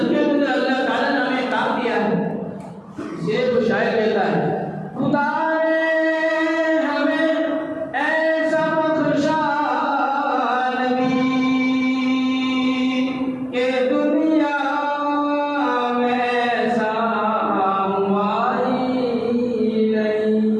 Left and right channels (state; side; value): identical; both; correlation 1.00